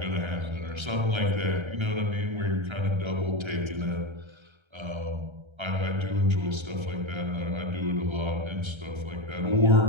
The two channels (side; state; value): left; late; 1.3 ms